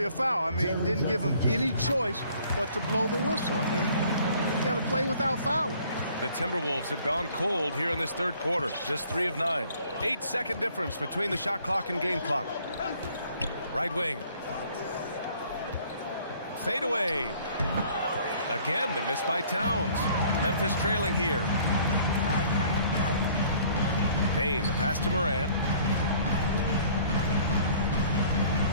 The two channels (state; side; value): inverted; both; correlation -0.56